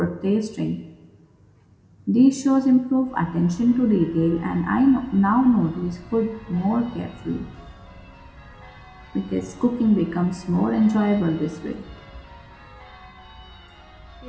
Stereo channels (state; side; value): identical; both; correlation 1.00